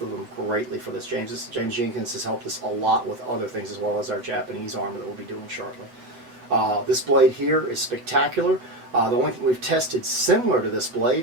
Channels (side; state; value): left; late; 8.0 ms